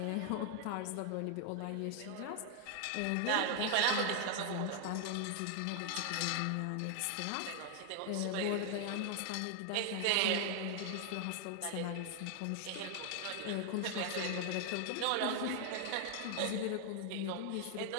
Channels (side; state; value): both; different; correlation 0.00